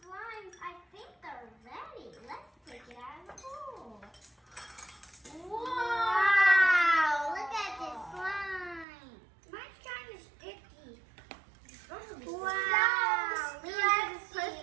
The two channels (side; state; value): left; drops out; at 8.8 s